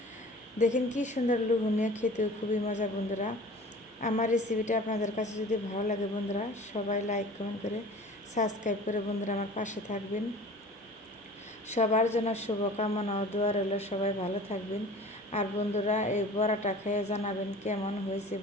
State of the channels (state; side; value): normal; both; correlation 0.43